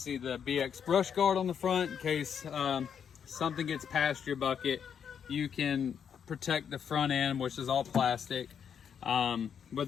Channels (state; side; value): quieter; right; 7.7 dB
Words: the BX brush guard on the front in case something gets past your bucket. You can protect the front end, which is all plastic, with